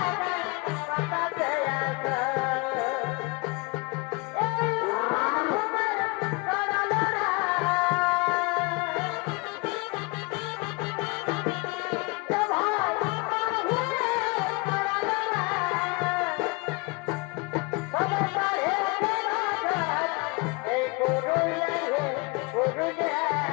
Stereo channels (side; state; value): right; quieter; 27.5 dB